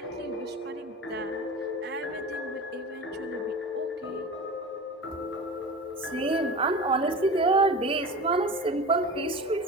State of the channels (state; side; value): normal; both; correlation 0.32